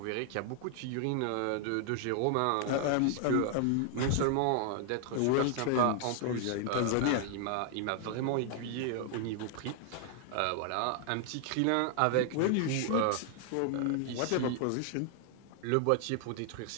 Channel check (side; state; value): both; different; correlation 0.00